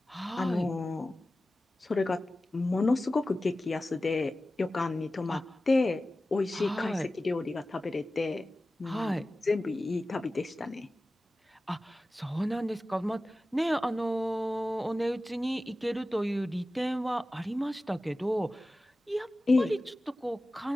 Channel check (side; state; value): both; normal; correlation 0.95